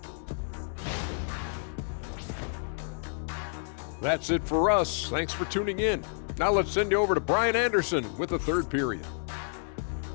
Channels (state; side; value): silent; right; digital silence